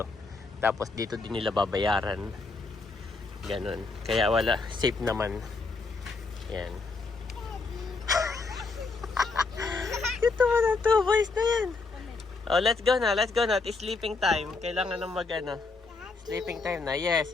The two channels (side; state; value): right; quieter; 3.9 dB